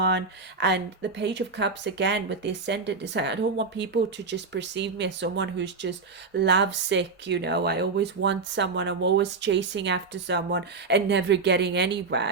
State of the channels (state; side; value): quieter; left; 4.4 dB